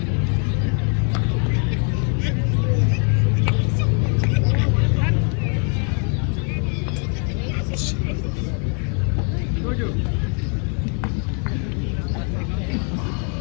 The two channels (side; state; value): right; quieter; 40.0 dB